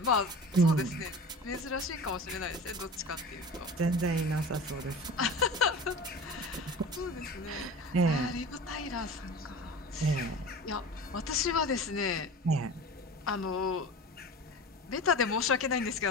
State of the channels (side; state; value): both; normal; correlation 0.35